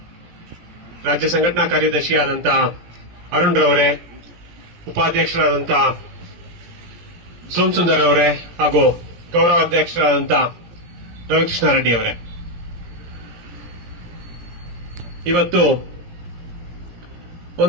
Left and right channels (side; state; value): left; late; 17 ms